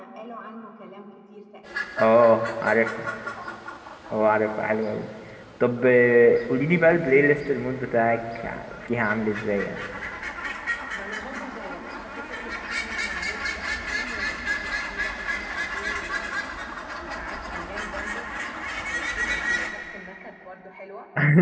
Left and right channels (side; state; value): both; identical; correlation 1.00